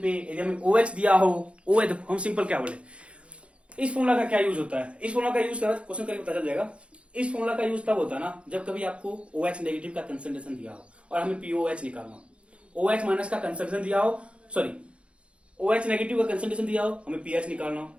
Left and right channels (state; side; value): late; left; 0.060 ms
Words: पे यदि हमें OH दिया हो, OH हम सिंपल क्या बोले, इस फॉर्मूला का क्या यूज होता है, इस फॉर्मूला का यूज करा क्वेश्चन करके पता चल जाएगा। इस फॉर्मूला का यूज तब होता है ना जब कभी आपको OH नेगेटिव का कंसंट्रेशन दिया हो और हमें POH निकालना, OH माइनस का कंसंट्रेशन दिया हो, सॉरी OH नेगेटिव का कंसंट्रेशन दिया हो, हमें pH निकालना हो।